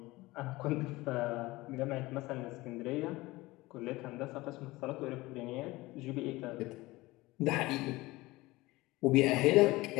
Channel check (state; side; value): quieter; right; 20.2 dB